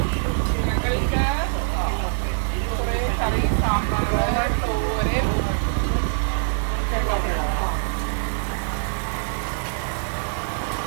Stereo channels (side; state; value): left; silent; digital silence